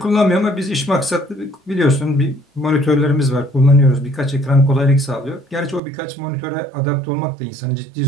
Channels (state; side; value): drops out; left; at 5.8 s